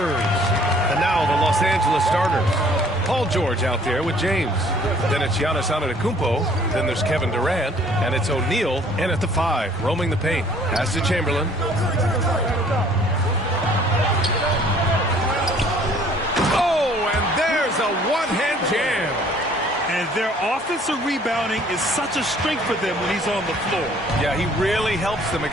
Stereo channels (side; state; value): both; normal; correlation 0.57